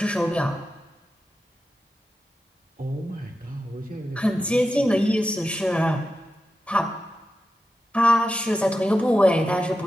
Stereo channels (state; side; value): normal; both; correlation 0.90